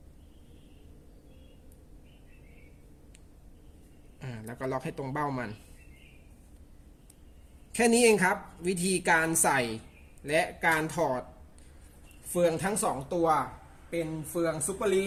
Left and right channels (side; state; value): both; identical; correlation 1.00